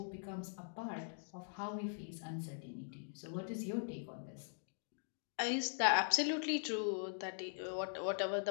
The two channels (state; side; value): silent; right; digital silence